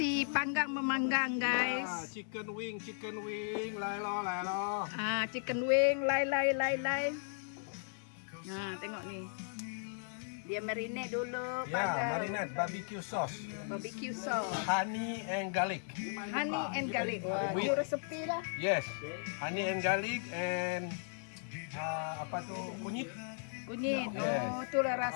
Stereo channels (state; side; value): silent; right; 53 dB below the other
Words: panggang memanggang, guys. Chicken wing, lai lo. Chicken wing, lai. Tengok ni. Dia marinate dulu. Ya, marinade barbecue sauce. Barbecue sauce. Honey and garlic. Honey and garlic. Wah, With- itu resepi lah. Yes, honey and garlic and apa tu kunyit. Kunyit. Yes. Oh, itulah